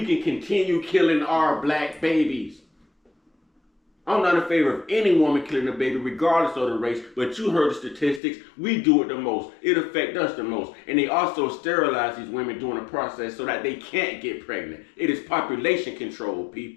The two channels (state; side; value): drops out; right; at 8.2 s